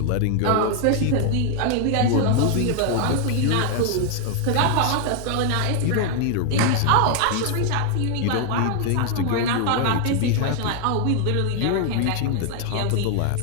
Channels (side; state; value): both; different; correlation 0.00